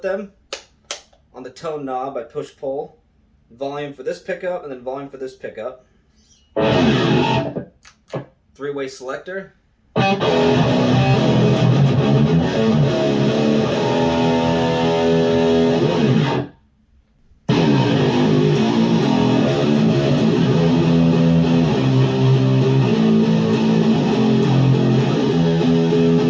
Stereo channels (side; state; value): both; identical; correlation 1.00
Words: on the tone knob by push-pull. Volume for this pickup and then volume for this pickup. Three-way selector.